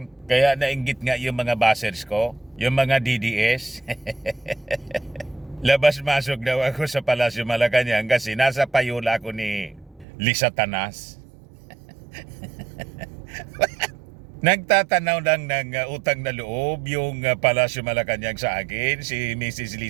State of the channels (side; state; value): left; drops out; at 10.1 s